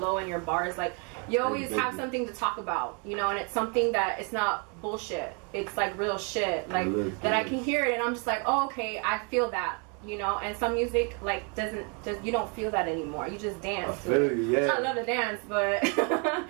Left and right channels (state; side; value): quieter; left; 34.7 dB